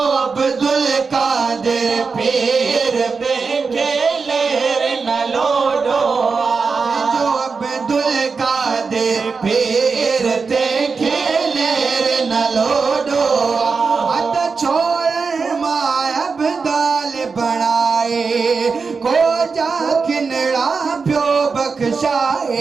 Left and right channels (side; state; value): left; quieter; 4.9 dB